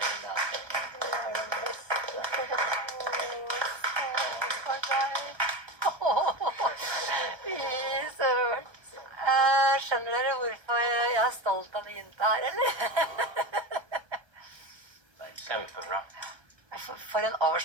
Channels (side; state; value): left; late; 1.1 ms